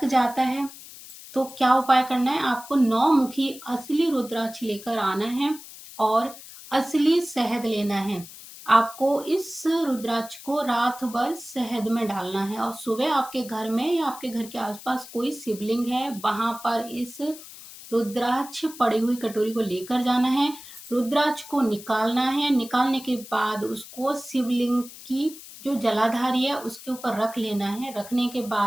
जाता है, तो क्या उपाय करना है? आपको 9 मुखी असली रुद्राक्ष लेकर आना है और असली शहद लेना है। आपको इस रुद्राक्ष को रात भर शहद में डालना है और सुबह आपके घर में या आपके घर के आसपास कोई शिवलिंग है, वहां पर इस रुद्राक्ष पड़ी हुई कटोरी को लेकर जाना है। रुद्राक्ष को निकालना है। निकालने के बाद उसको शिवलिंग की जो जलाधारी है उसके ऊपर रख लेना है। रखने के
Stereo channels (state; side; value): noise; left; hiss, 16 dB below the sound